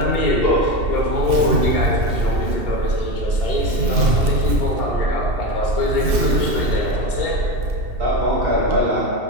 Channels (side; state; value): left; late; 2.7 ms